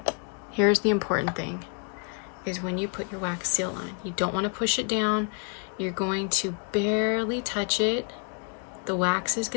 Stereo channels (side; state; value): right; quieter; 39.3 dB